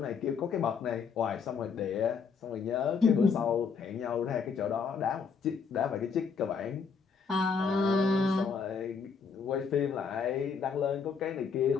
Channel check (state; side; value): quieter; right; 5.7 dB